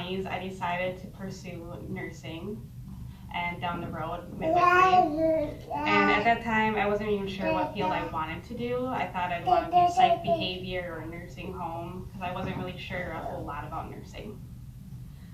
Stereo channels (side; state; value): both; identical; correlation 1.00